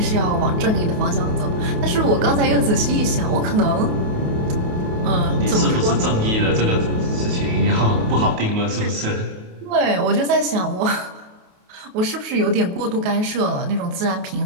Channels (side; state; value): left; late; 28 ms